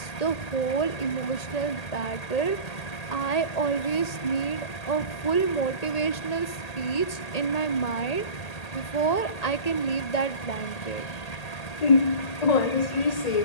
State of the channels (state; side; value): late; right; 1.8 ms